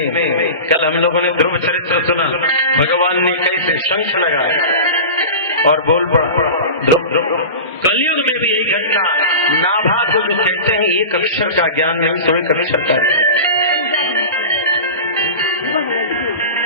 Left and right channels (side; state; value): both; inverted; correlation -0.31